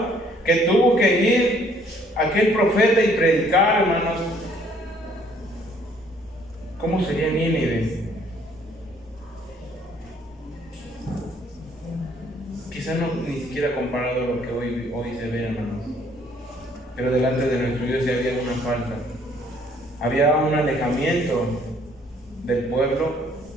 Que tuvo que ir aquel profeta y predicar, hermanos. ¿Cómo sería Nínive? Quizás no ni siquiera comparado a lo que hoy se ve, hermanos. Pero delante de nuestro Dios ya había una falta. Había un alejamiento del pueblo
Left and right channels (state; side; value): normal; both; correlation 0.62